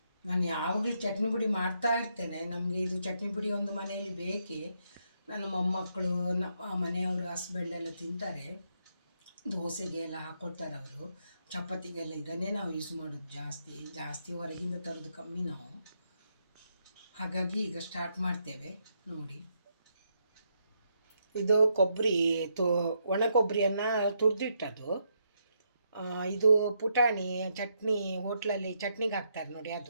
ನಾನು ಯಾವಾಗಲೂ ಚಟ್ನಿ ಪುಡಿ ಮಾಡ್ತಾ ಇರ್ತೇನೆ. ನಮಗೆ ಇದು ಚಟ್ನಿ ಪುಡಿ ಒಂದು ಮನೆಯಲ್ಲಿ ಬೇಕೇ. ನನ್ನ ಮೊಮ್ಮಕ್ಕಳು, ನಮ್ಮ ಮನೆಯವರು, ಹಸ್ಬೆಂಡ್ ಎಲ್ಲ ತಿಂತಾರೆ. ದೋಸೆಗೆ ಎಲ್ಲ ಹಾಕ್ಕೊಳ್ತಾರೆ ಅವರು. ಚಪಾತಿಗೆಲ್ಲ ಇದನ್ನೇ ನಾವು ಯೂಸ್ ಮಾಡೋದು ಜಾಸ್ತಿ ಹೊರಗಿಂದ ತರೋದು ಕಮ್ಮಿ ನಾವು. ಹಾಗಾಗಿ ಈಗ ಸ್ಟಾರ್ಟ್ ಮಾಡ್ತೇವೆ ನೋಡಿ. ಇದು ಕೊಬ್ಬರಿ ಒಣ ಕೊಬ್ಬರಿಯನ್ನು ತುರಿದಿಟ್ಟದು. ಇದು ಪುಟಾಣಿ ಚಟ್ನಿ, ಹೋಟ್ಲಲ್ಲಿ ಚಟ್ನಿಗೆ ಹಾಕ್ತಾರೆ ನೋಡಿ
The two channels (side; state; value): both; inverted; correlation -0.78